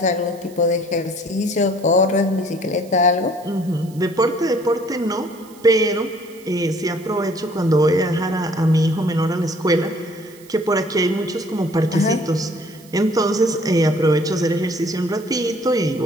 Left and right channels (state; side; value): noise; right; hiss, 24 dB below the sound